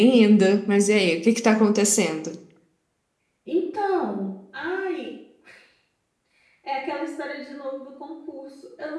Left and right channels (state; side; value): identical; both; correlation 1.00